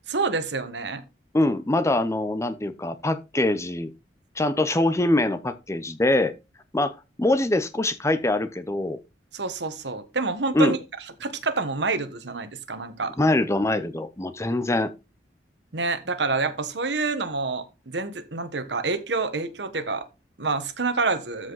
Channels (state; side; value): normal; both; correlation 0.44